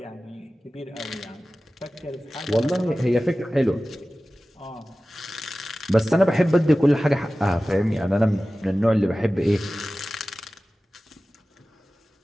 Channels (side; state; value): both; normal; correlation 0.96